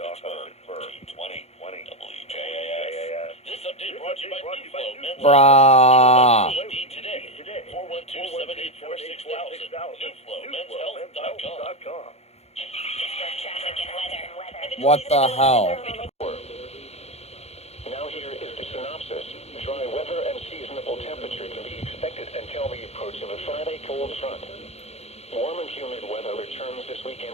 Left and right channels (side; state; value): right; late; 0.31 ms